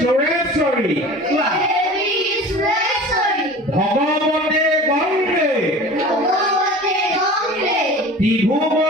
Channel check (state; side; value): normal; both; correlation 0.39